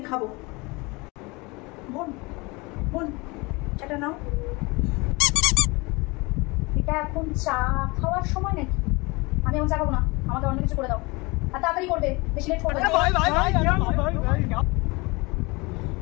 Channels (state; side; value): quieter; right; 25.6 dB